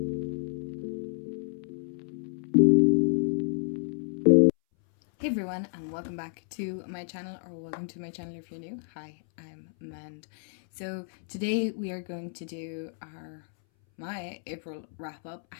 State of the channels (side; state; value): right; silent; 58 dB below the other